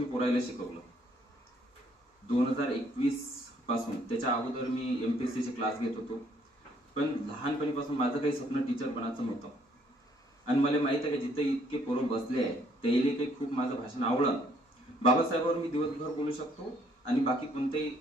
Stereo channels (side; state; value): both; normal; correlation 0.65